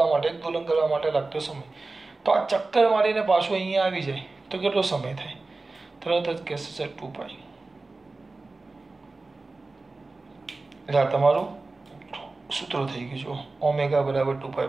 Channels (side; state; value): left; quieter; 3.5 dB